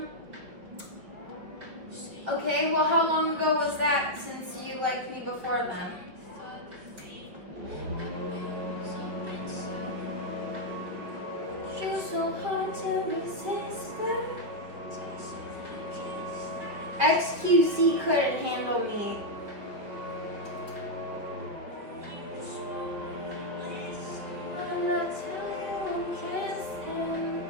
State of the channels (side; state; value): left; late; 5.4 ms